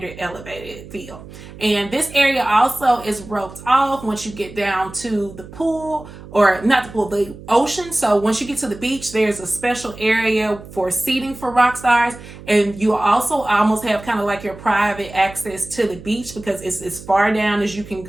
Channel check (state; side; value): noise; right; hum, 16 dB below the sound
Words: elevated feel. And this area also is roped off once you get down to the pool, or not the pool, the ocean. So once you get to the beach, there's a special area for seating for rock stars. And you also almost have kind of like your private access to the beach because it's as far down as you can